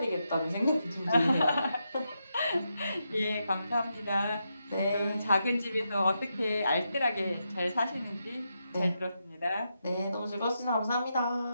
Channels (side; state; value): both; inverted; correlation -0.84